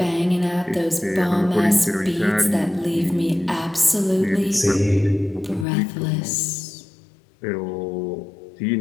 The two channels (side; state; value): right; drops out; at 5.7 s